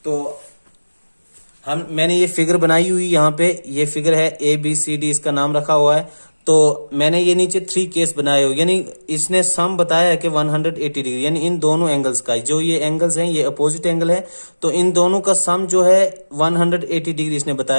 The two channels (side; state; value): both; inverted; correlation -1.00